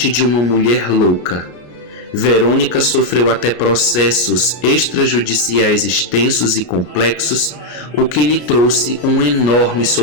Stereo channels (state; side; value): late; right; 33 ms